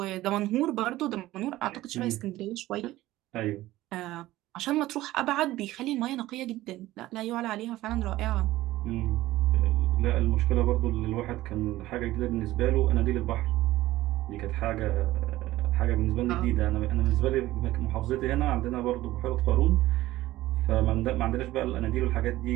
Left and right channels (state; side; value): quieter; left; 16.4 dB